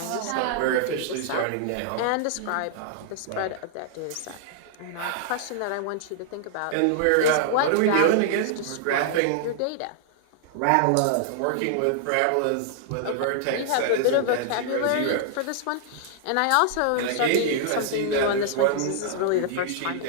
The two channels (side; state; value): both; different; correlation -0.01